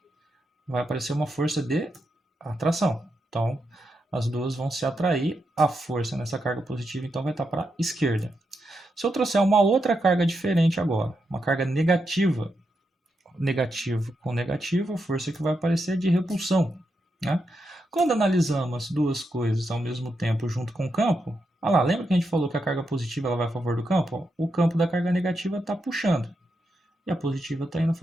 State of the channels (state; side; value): normal; both; correlation 0.84